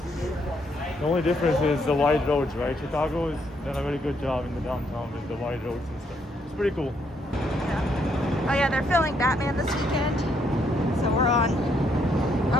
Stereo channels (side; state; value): both; normal; correlation 0.72